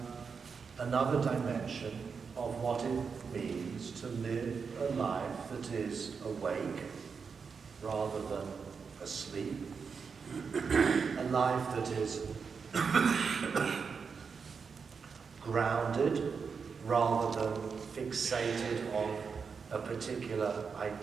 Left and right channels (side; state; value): left; quieter; 5.7 dB